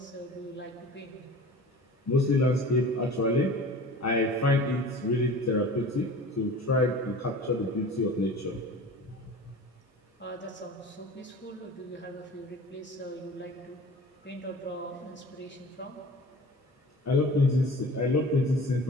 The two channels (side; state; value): both; normal; correlation 0.39